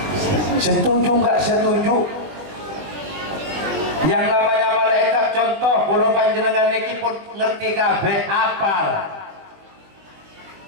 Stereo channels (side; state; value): left; late; 20 ms